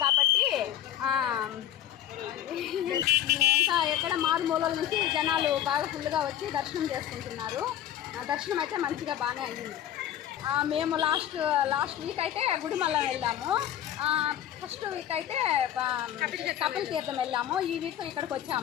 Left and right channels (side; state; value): right; quieter; 11.5 dB